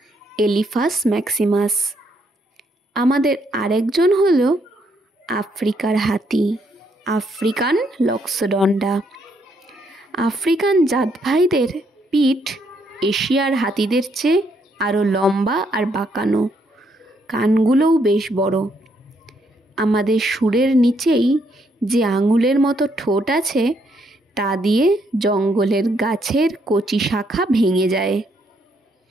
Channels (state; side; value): normal; both; correlation 0.73